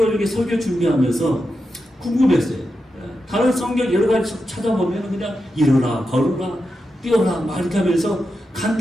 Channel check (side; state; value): both; normal; correlation 0.88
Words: 이렇게 설교 준비하면서 궁금했어요. 다른 성경 여러 가지 찾아보면 그냥 일어나 걸어라 뛰어라 막 이렇게 하면서